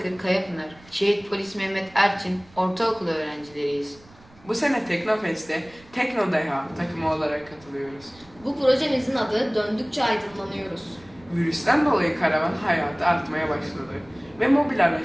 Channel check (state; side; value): noise; right; rumble, 26 dB below the sound